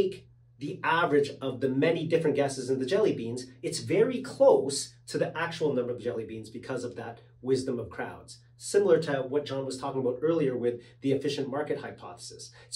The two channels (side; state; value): both; identical; correlation 1.00